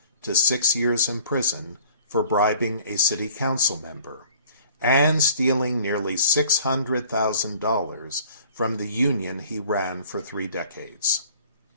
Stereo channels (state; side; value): inverted; both; correlation -0.54